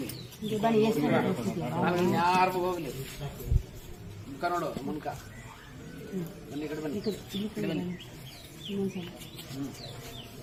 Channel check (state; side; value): identical; both; correlation 1.00